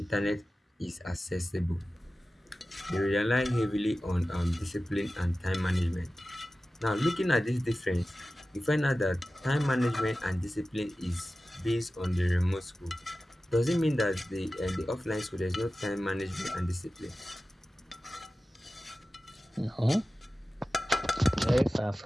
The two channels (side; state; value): both; normal; correlation 0.95